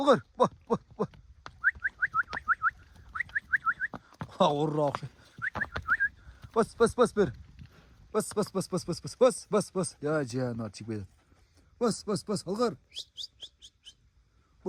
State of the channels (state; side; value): identical; both; correlation 1.00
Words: Orra. Bas bir. Bas. Ya canım çıkmadı. Bas, Algır.